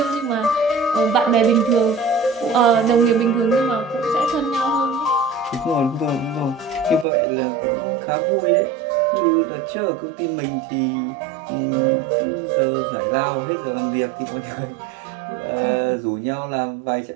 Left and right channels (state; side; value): drops out; left; at 7.1 s